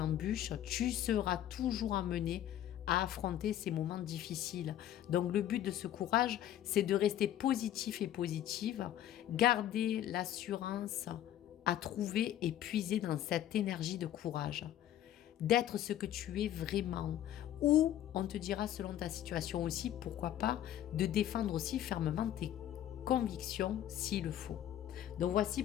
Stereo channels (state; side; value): quieter; right; 11.8 dB